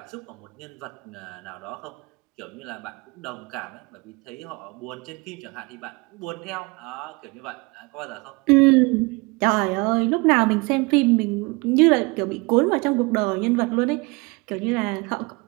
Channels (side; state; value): left; quieter; 27.0 dB